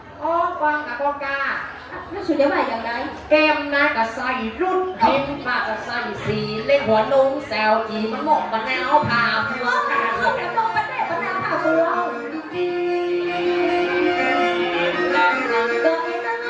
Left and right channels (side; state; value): both; identical; correlation 1.00